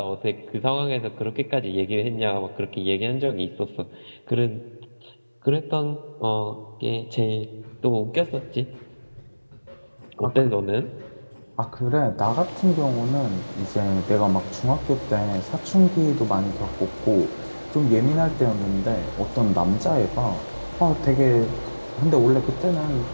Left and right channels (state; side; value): inverted; both; correlation -1.00